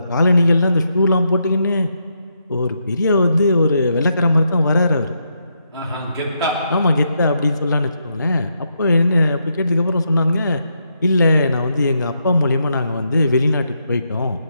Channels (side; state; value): both; inverted; correlation -0.80